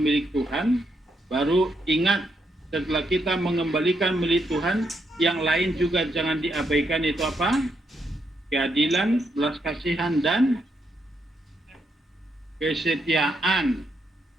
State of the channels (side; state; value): both; normal; correlation 0.79